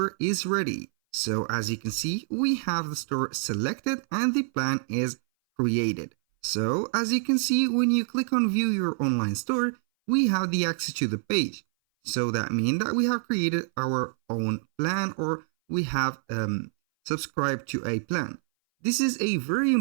is ready. So as you can see, we have the store selected and the plan is created. So as you can see, when you click on view your online store, we have the access to the page. So that means that we have created our own plan or we have subscribed to a plan. This is a very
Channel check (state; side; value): silent; left; 58 dB below the other